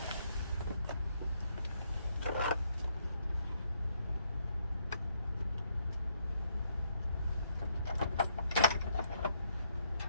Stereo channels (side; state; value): both; inverted; correlation -0.73